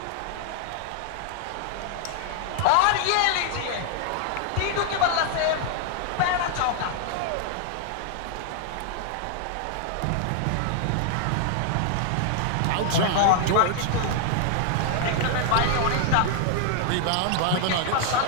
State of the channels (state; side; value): different; both; correlation 0.00